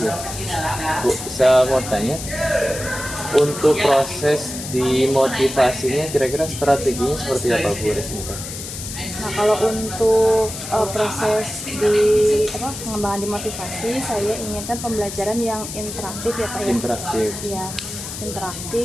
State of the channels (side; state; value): left; noise; hiss, 9 dB below the sound